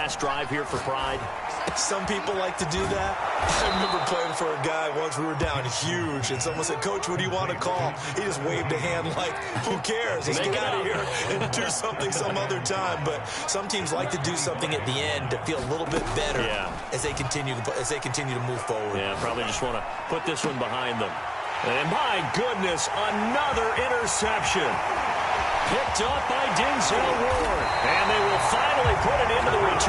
drive here for pride? Some people like to do that. I remember playing for a guy once. We were down huge, and someone said, "Coach, what do you want to call?" He just waved a hand like, "Who cares? Let's get out of here and do something some other time." But some teams like to do something at the end to feel a little bit better as they continue to move forward. Yeah, probably just want to put this one behind them. And my goodness, another interception. Picked up by Denzel Ward. And they will finally put it into the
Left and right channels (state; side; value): identical; both; correlation 1.00